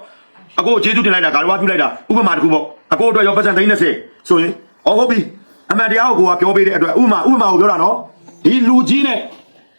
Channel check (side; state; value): both; inverted; correlation -1.00